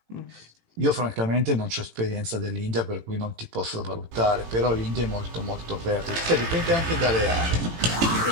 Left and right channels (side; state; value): left; late; 18 ms